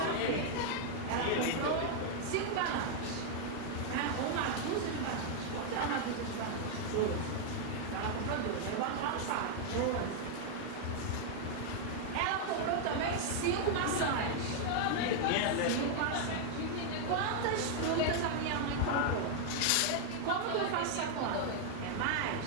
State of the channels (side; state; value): both; different; correlation 0.00